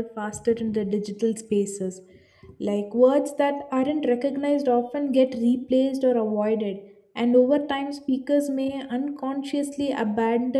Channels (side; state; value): both; identical; correlation 1.00